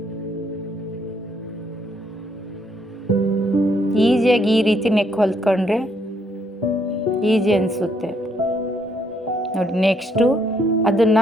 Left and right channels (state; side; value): normal; both; correlation 0.71